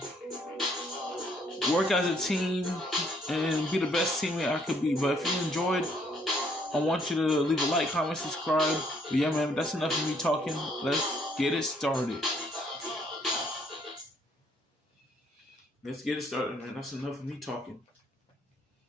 work as a team and be the best teammate I could be. But if you enjoyed, I want you to leave a like, comment, subscribe. But yeah, man, that's enough of me talking. Let's get it started. Let's get it started, man. That's enough of me talking.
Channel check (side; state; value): both; normal; correlation 0.67